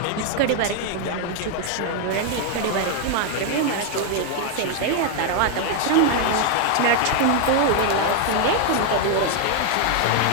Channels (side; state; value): both; different; correlation 0.00